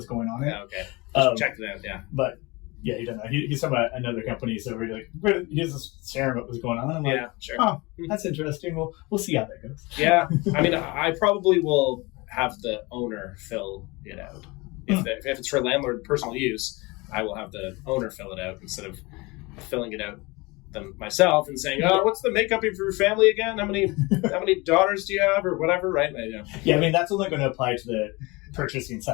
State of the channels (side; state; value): right; quieter; 24.5 dB